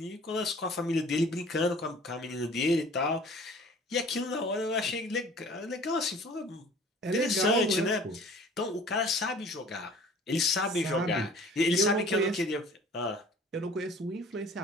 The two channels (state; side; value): normal; both; correlation 0.48